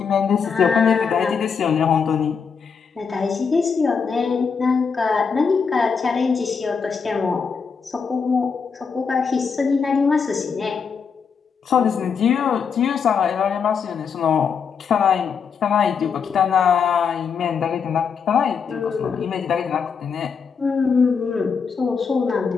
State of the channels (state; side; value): quieter; right; 6.0 dB